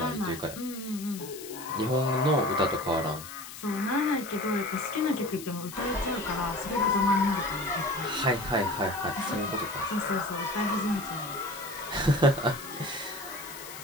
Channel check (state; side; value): noise; left; hiss, 13 dB below the sound